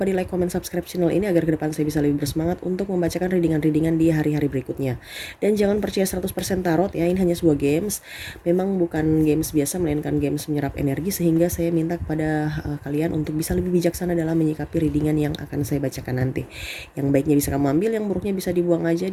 di like, comment, subscribe channel ini agar ke depan saya bisa lebih bersemangat untuk membacakan readingan-readingan di hari-hari berikutnya. Dan jangan percaya 100% tarot ya, ini hanya sebuah games. Memang bukan games biasa melainkan games menyerap energi, sehingga saya minta kepada kalian untuk bisa lebih bijaksana dalam menyikapi readingan yang akan saya bacakan nanti. Yang baiknya bisa kamu ambil, yang buruknya bisa dibuang aja,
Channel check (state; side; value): identical; both; correlation 1.00